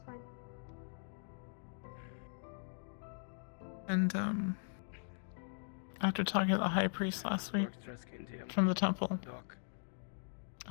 fine. And after talking to the high priest last week Works dress skin to you. from the temple, Doc.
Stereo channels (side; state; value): right; silent; digital silence